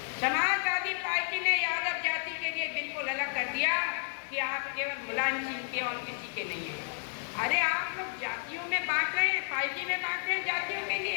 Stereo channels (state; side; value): silent; right; 57 dB below the other